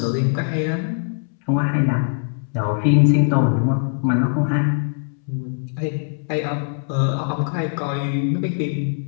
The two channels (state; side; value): silent; right; 65 dB below the other